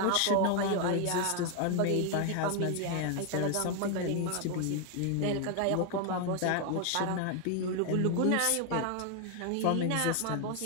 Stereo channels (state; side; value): different; both; correlation 0.01